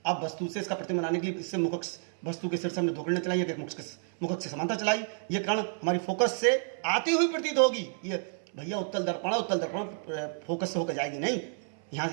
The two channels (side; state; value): left; silent; 58 dB below the other